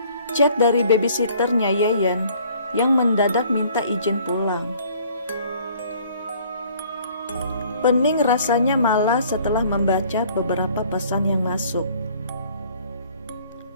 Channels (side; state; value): both; inverted; correlation -0.56